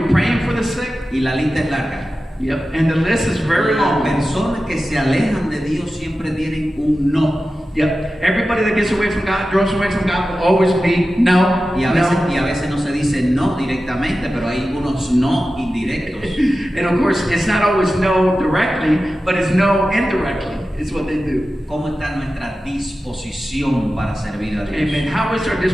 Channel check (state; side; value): normal; both; correlation 0.93